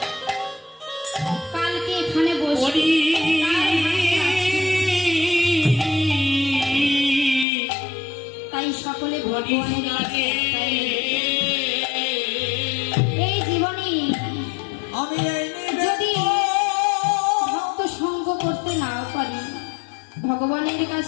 কালকে এখানে বসবে, করি তাই সকলে ভগবানের কাছে একটাই নিবেদন। এই জীবনে আমি এই যদি নিবেদন ভক্ত সঙ্গ করতে নাও পারি, ভগবানের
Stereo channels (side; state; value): right; drops out; at 7.5 s